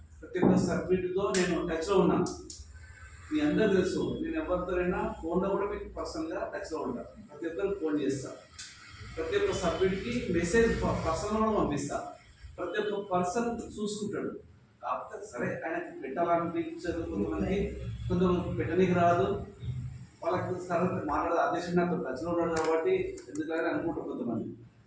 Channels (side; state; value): both; identical; correlation 1.00